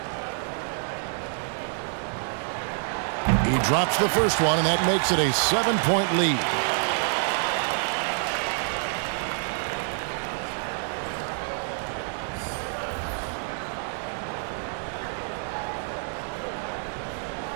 He drops the first one, and that makes it a 7-point lead.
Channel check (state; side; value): silent; left; 59 dB below the other